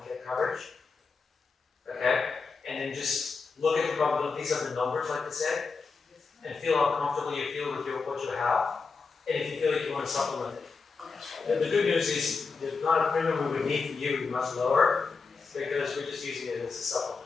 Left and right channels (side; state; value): right; quieter; 4.7 dB